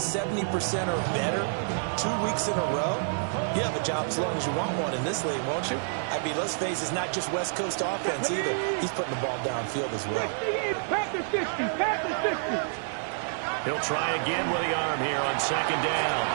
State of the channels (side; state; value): left; silent; 59 dB below the other